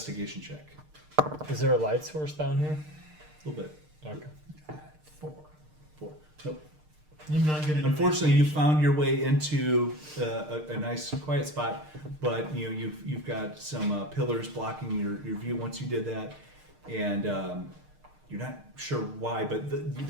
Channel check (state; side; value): late; left; 6.6 ms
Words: check. Is there a light source down here? A little bit. Okay. 4. 4. Nope. I'm not good at Unfortunately, you found your way into a nice quiet spot, but you've got some pillars blocking your view once you did that, and you're not sure why, but